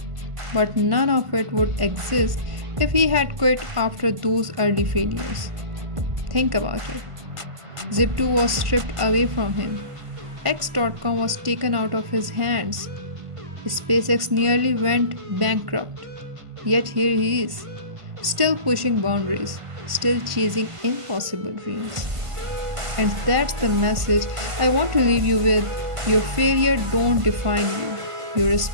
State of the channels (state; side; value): late; left; 1.5 ms